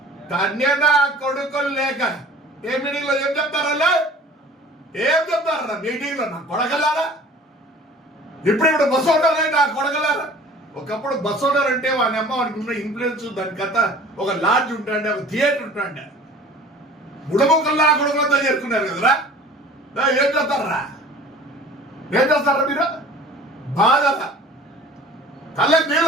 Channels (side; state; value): both; normal; correlation 0.45